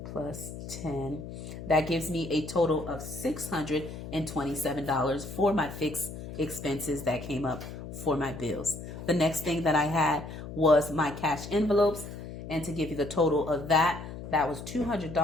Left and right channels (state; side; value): noise; left; hum, 10 dB below the sound